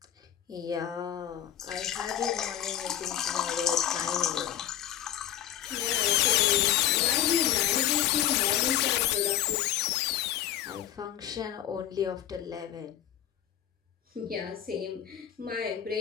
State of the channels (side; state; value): right; quieter; 11.2 dB